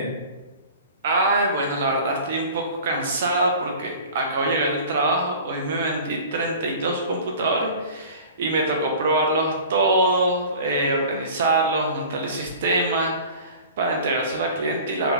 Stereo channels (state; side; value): inverted; both; correlation -0.42